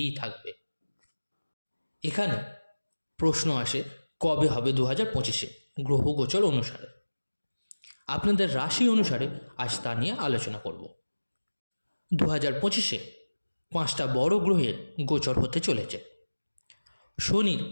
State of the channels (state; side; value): inverted; both; correlation -1.00